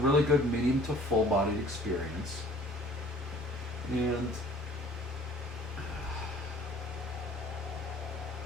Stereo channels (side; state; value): both; normal; correlation 0.52